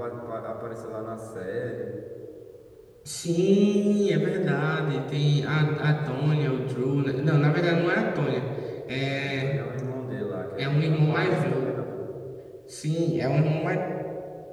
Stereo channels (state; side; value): identical; both; correlation 1.00